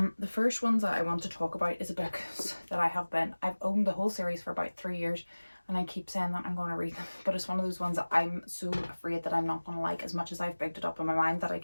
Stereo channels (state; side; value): inverted; both; correlation -1.00